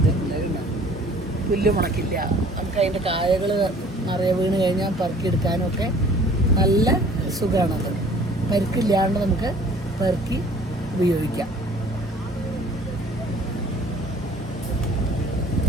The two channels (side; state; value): both; normal; correlation 0.52